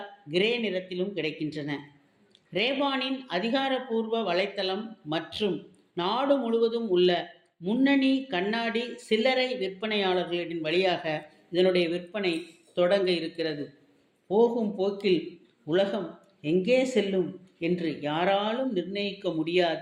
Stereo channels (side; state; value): both; identical; correlation 1.00